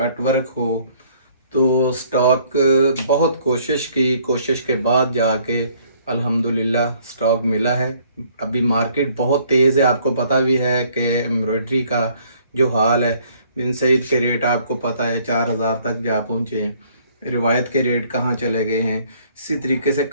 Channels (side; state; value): both; inverted; correlation -0.62